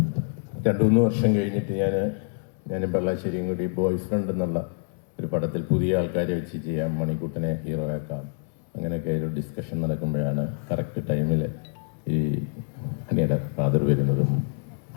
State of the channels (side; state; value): right; silent; digital silence